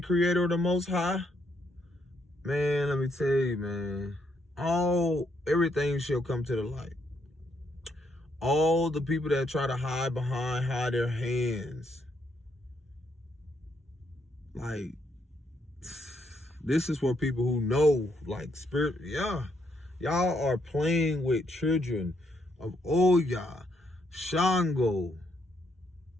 of the Most High. Man, let me tell you, man, everything shall come to the light. All the people that try to hide their hands. Like, this is for people who know, like, spirit. Yeah, y'all are playing with children of Oya, Shango.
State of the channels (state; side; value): normal; both; correlation 0.75